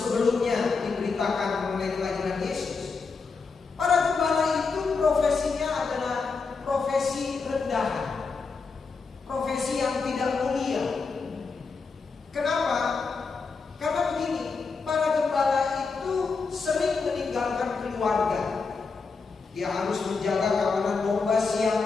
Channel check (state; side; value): quieter; right; 4.7 dB